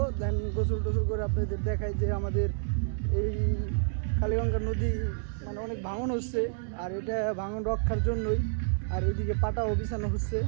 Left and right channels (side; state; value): left; silent; digital silence